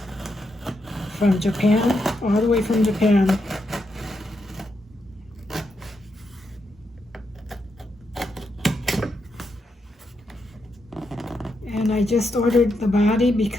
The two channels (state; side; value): normal; both; correlation 0.82